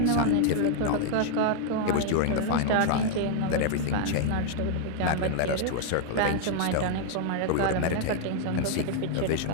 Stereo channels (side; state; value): both; different; correlation 0.00